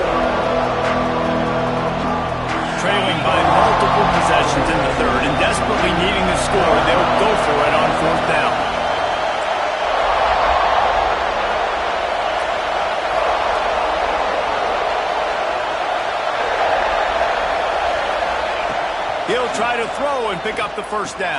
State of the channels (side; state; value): both; identical; correlation 1.00